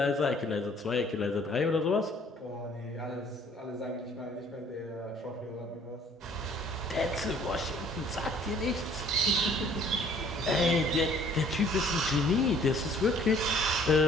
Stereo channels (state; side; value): normal; both; correlation 0.57